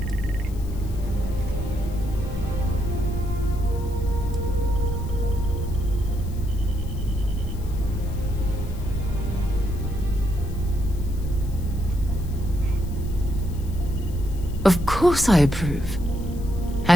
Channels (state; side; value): noise; left; hiss, 22 dB below the sound